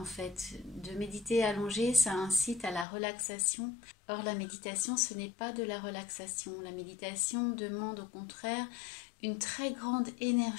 fait. De méditer allongé, ça incite à la relaxation. Or, la méditation, ce n'est pas de la relaxation. La méditation demande au contraire une très grande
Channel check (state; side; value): drops out; right; at 2.9 s